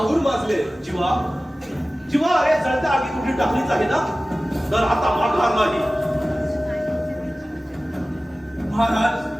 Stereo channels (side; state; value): both; normal; correlation 0.96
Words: माजले. जीवा, जीवा, अरे जळत्या आगी कुठे टाकलीच आहे ना, तर आता माघार नाही. महाराज,